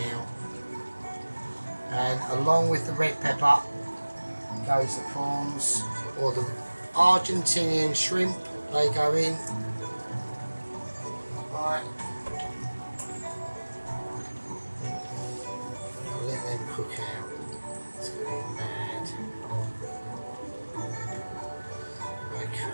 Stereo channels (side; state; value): both; inverted; correlation -1.00